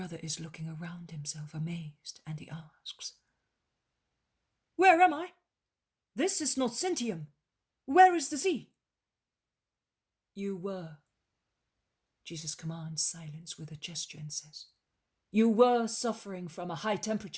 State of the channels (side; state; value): both; identical; correlation 1.00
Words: is looking around himself, amazed, and he asks, "Where am I? This is not Sintium. Where is the sea?" "You were." Jesus commands silence with a gesture and says, "You were suffering from a high